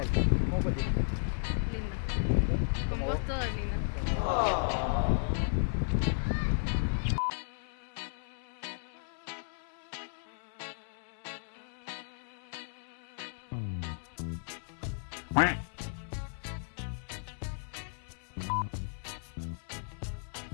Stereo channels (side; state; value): right; silent; digital silence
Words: ¿cómo fue el día? Lindo. Con ¿Cómo vos vos? todo es lindo. Me va a morder y va a ser tu culpa. Espérate, acá atrás. Mordale con. Ahora que tengo todo yo encima. Es tu culpa, ¿ves? Señor, corre, señor, señor, por favor. Sí,